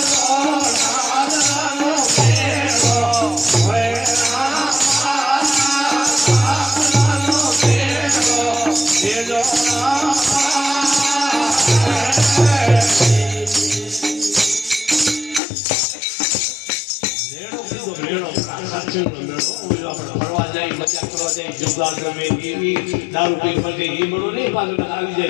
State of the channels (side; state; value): right; drops out; at 15.4 s